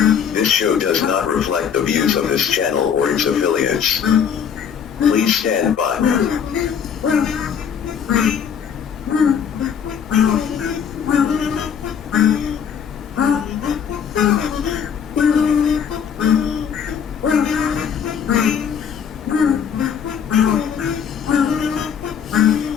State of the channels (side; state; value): right; quieter; 7.7 dB